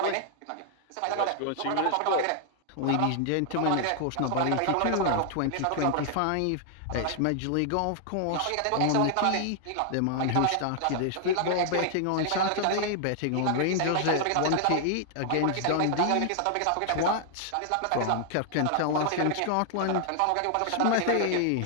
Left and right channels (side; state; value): both; different; correlation 0.00